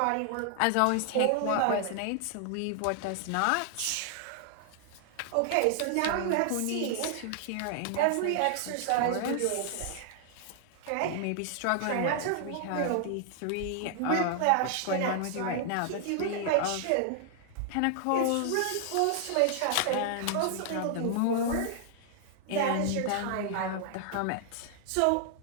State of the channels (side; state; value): both; different; correlation 0.00